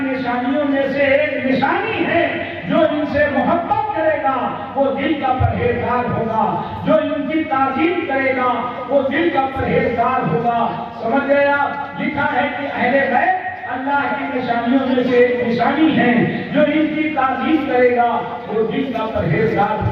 نشانیوں میں سے ایک نشانی ہے جو ان سے محبت کرے گا وہ دل کا پرہیزگار ہوگا, جو ان کی تعظیم کرے گا وہ دل کا پرہیزگار ہوگا. سمجھ گیا؟ لکھا ہے کہ اہل بیت اللہ کی نشانیوں میں سے ایک نشانی ہے, جو ان کی تعظیم کرے گا وہ دل کا پرہیزگار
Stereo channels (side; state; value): both; identical; correlation 1.00